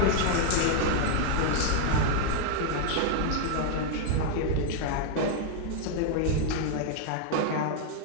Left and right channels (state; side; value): different; both; correlation 0.00